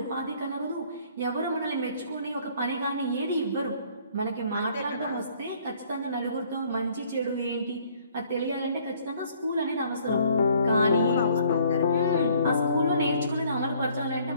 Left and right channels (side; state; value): both; inverted; correlation -0.60